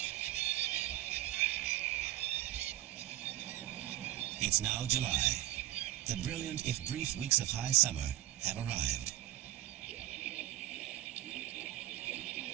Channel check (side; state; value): left; quieter; 14.8 dB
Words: It's now July. The brilliant, if brief, weeks of high summer have arrived.